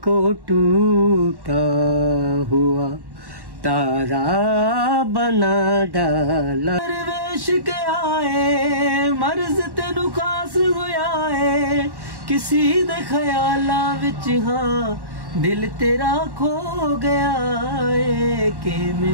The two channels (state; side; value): late; left; 1.1 ms